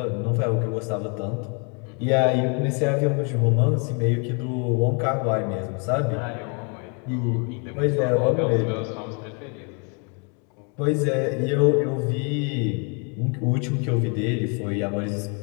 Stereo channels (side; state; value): right; quieter; 36.5 dB